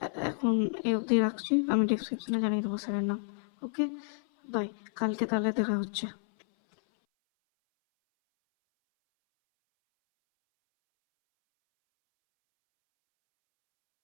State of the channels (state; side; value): silent; right; 58 dB below the other